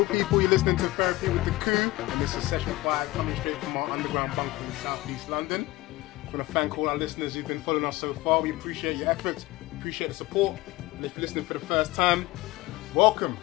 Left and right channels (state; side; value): quieter; right; 18.9 dB